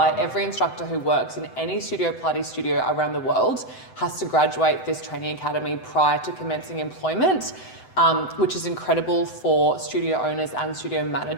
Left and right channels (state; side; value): late; right; 7.9 ms